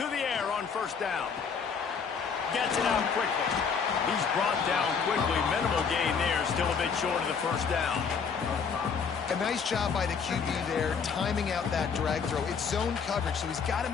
the air on first down. Gets it out quickly. He's brought down quickly. Minimal gain there. Still a bit short of the first down. A nice job by the QB there, timing out that drag throw. It's zone coverage, so he's got to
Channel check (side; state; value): right; quieter; 6.1 dB